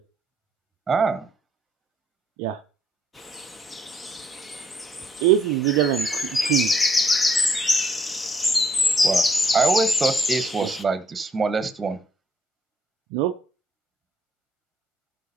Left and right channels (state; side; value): normal; both; correlation 0.68